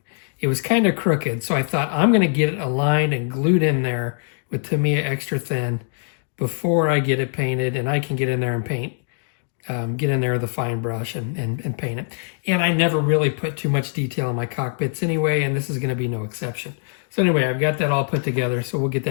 It was kind of crooked. So I thought I'm going to get it aligned and glued in there with Tamiya Extra Thin before I get it painted, and I can get in there and paint, get in there with a fine brush and paint it. And I never really put too much detail in my cockpits anyway, and this is going to be no exception. So anyway, I've got that all put together, so we'll get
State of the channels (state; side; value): silent; right; digital silence